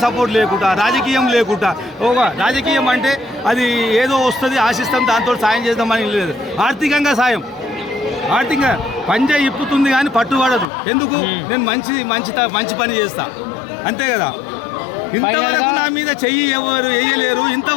సపోర్ట్ లేకుండా ఒక రాజకీయం అంటే అది ఏదో వస్తుంది ఆశిస్తాం దాంతో సాయం చేద్దామని లేదు. ఆర్థికంగా సాయం, ఆర్థికంగా పంజా ఇప్పుతుంది కానీ పట్టుబడదు. ఎందుకు? నేను మంచి పని చేస్తా అంతే కదా. ఇంతవరకు నా మీద చెయ్యి ఎవరు వేయలేరు,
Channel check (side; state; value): right; drops out; at 10.7 s